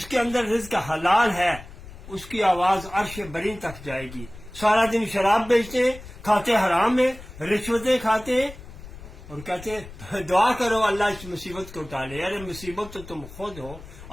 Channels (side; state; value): left; noise; rumble, 16 dB below the sound